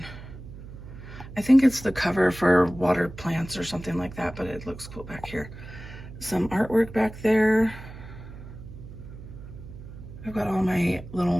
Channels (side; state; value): right; noise; hum, 14 dB below the sound